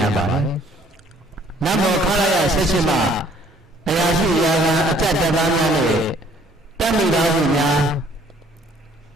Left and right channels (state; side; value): normal; both; correlation 0.60